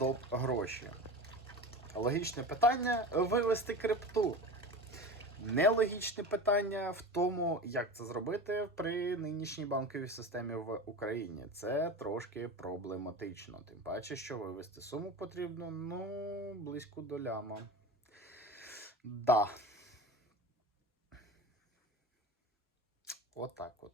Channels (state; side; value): normal; both; correlation 0.30